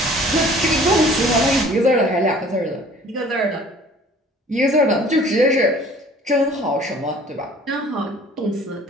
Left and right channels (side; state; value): both; normal; correlation 0.51